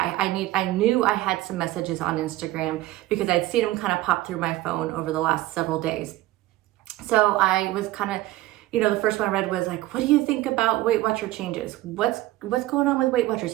knew I had some messages on Instagram because I'd seen them kind of pop through my phone over the last several days. So I was kind of, the first one I read was like, what do you think about Weight Watcher changes? What's going on with Weight Watchers?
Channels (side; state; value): left; quieter; 16.8 dB